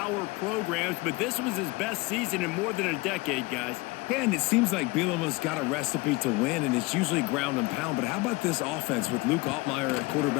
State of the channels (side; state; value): right; quieter; 23.1 dB